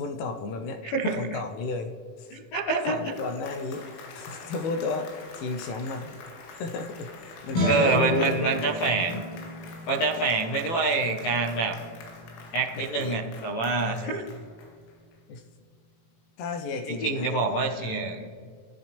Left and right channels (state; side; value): late; right; 18 ms